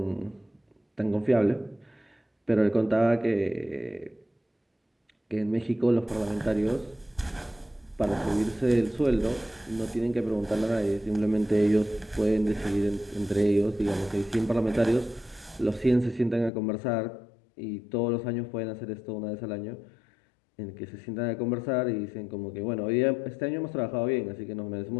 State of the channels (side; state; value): right; drops out; at 16.5 s